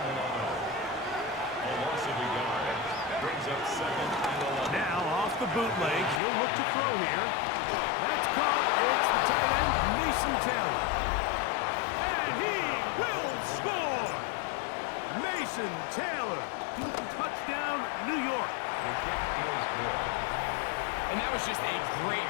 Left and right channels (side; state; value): right; drops out; at 6.2 s